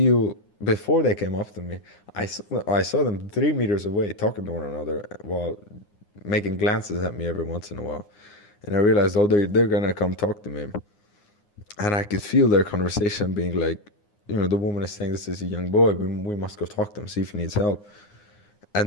before they came up to me, I saw them 3 meters away talking to one another while making glances at me every once in a while. And I realized, they're going to come talk to me. And I could feel their conversation being like, you know, the woman is saying, this is a young boy. We must go talk to him, see if he needs help.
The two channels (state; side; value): late; right; 9.7 ms